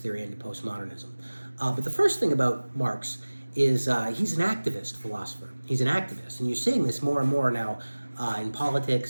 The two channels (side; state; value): both; inverted; correlation -1.00